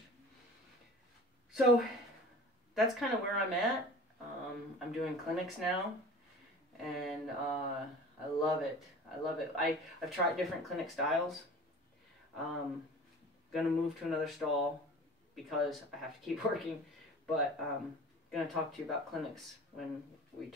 So that's kind of where I'm at. I'm doing clinics now, and I love it. I love it. I've tried different clinic styles. Gonna move to another stall because I have to keep working, but gonna talk to you about clinics when we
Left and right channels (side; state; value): both; normal; correlation 0.40